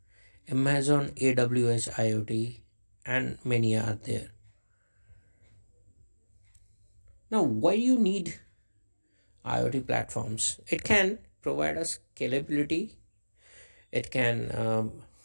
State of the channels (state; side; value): inverted; both; correlation -1.00